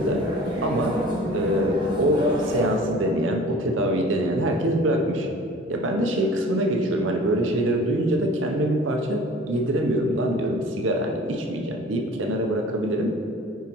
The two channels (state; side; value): normal; both; correlation 0.45